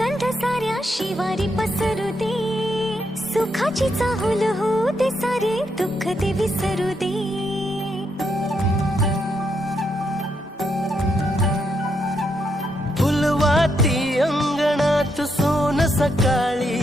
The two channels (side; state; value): both; normal; correlation 0.79